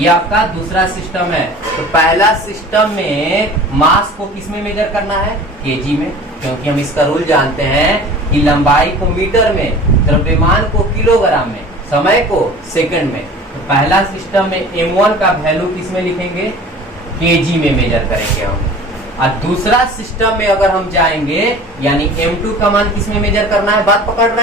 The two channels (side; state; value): both; normal; correlation 0.42